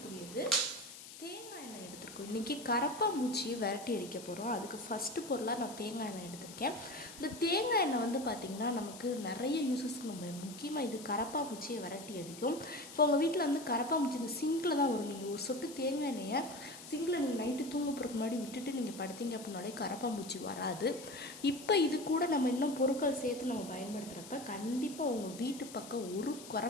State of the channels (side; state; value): left; noise; hiss, 14 dB below the sound